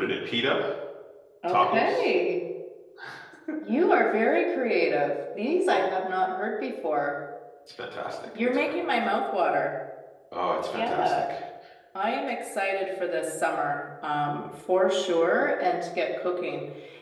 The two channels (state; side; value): identical; both; correlation 1.00